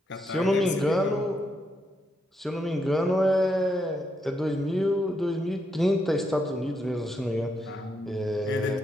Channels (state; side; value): normal; both; correlation 0.80